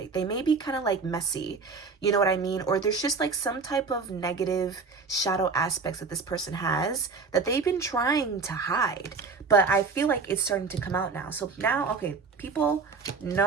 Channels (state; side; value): quieter; left; 4.7 dB